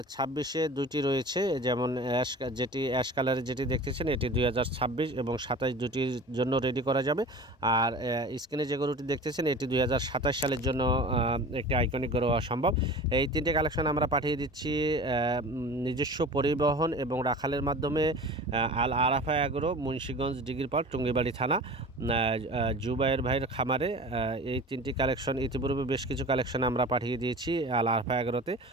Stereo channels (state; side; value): normal; both; correlation 0.38